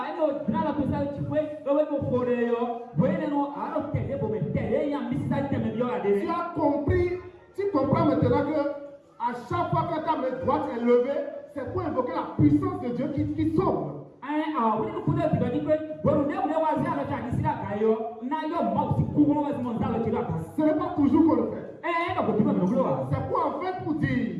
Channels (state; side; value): identical; both; correlation 1.00